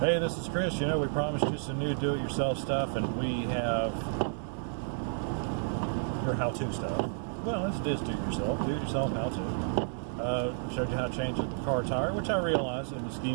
this is Chris. You know, we promised you some new do-it-yourself stuff, and we have your how-to stuff. Well, it's do-it-yourself how-to. Showed you how to change a car tire, which I realize in the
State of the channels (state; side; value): silent; left; digital silence